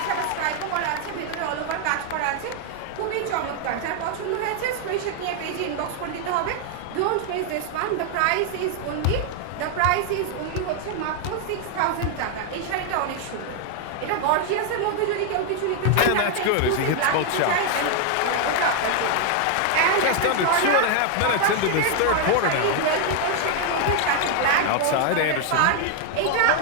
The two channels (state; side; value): different; both; correlation 0.00